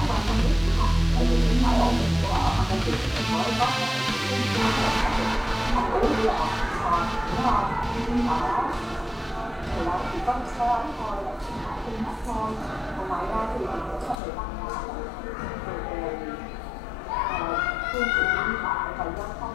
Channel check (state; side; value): drops out; right; at 14.2 s